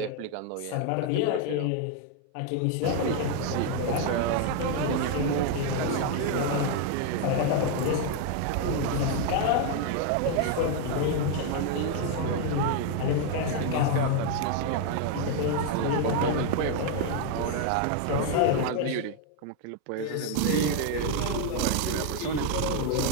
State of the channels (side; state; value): both; different; correlation 0.00